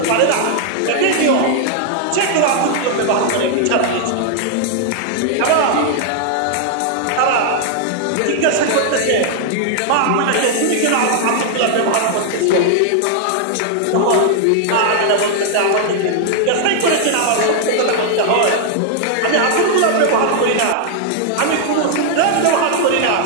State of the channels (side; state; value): both; different; correlation 0.00